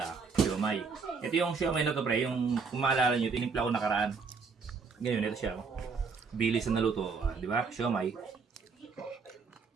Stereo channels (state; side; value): quieter; left; 5.0 dB